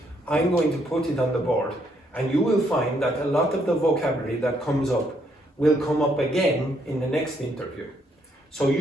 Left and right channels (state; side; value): normal; both; correlation 0.72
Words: I'm going to put it on the board, and you will find that a lot of the vocabulary that comes up will come up again in the next interview. So